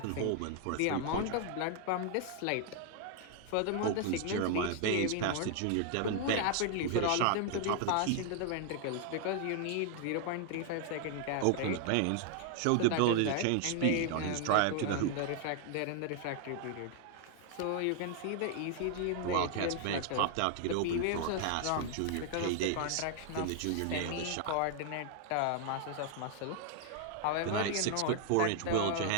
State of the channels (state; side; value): different; both; correlation 0.00